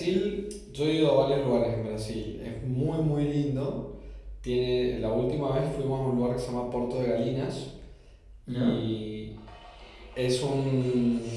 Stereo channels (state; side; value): identical; both; correlation 1.00